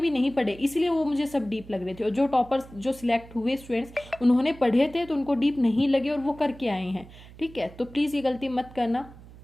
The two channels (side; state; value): right; noise; hum, 19 dB below the sound